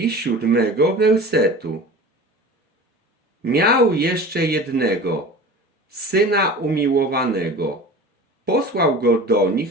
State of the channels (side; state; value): both; normal; correlation 0.38